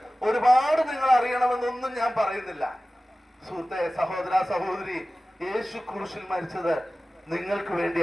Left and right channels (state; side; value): normal; both; correlation 0.96